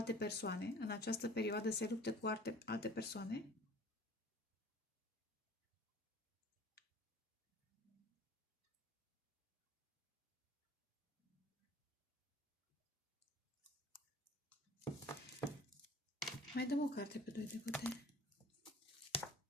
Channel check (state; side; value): normal; both; correlation 0.47